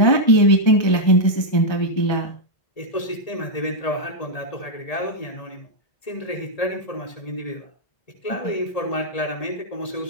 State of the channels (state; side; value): late; right; 1.8 ms